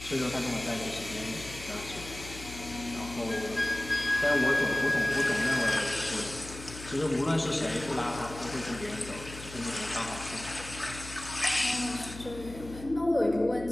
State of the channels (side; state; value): left; noise; hum, 13 dB below the sound